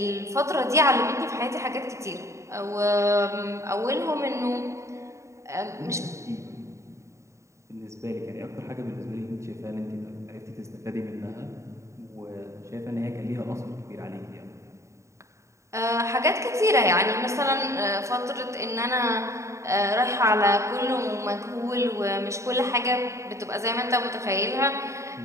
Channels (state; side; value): late; left; 0.14 ms